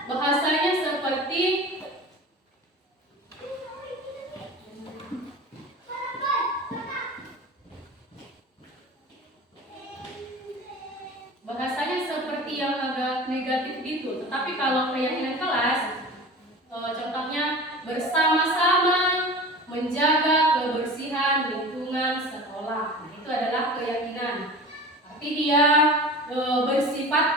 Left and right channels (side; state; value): both; normal; correlation 0.36